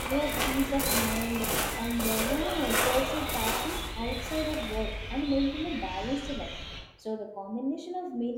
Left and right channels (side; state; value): both; identical; correlation 1.00